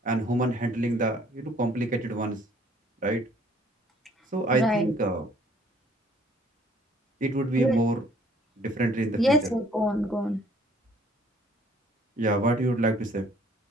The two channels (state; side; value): normal; both; correlation 0.59